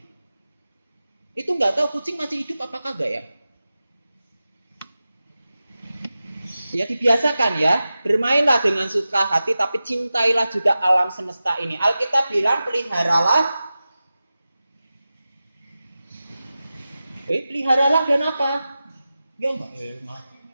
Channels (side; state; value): both; inverted; correlation -0.94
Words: Itu nggak tahu kucing masih hidup apa kagak ya? Ya dibiasakan ya, bermainlah dengan suka hati, tapi cintailah juga alam semesta ini. Alkitab bilang peliharalah. Peliharalah dan apa? Ya enggak.